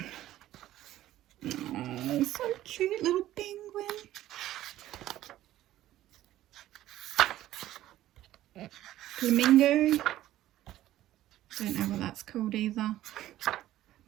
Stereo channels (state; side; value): quieter; left; 14.0 dB